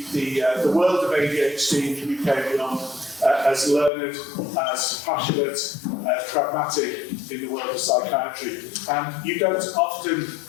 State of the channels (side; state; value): right; drops out; at 3.9 s